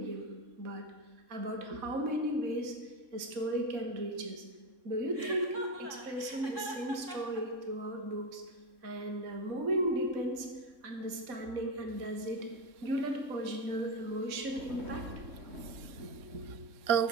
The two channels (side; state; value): left; late; 3.6 ms